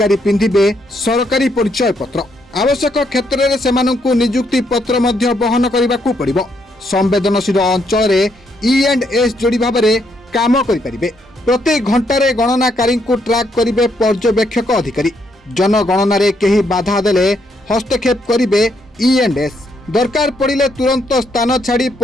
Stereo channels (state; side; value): normal; both; correlation 0.75